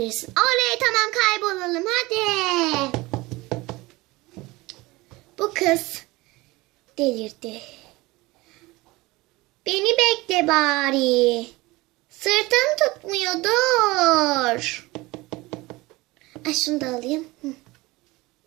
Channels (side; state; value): left; quieter; 21.4 dB